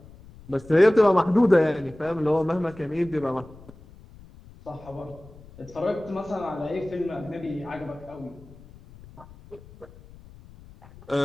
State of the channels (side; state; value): left; noise; rumble, 21 dB below the sound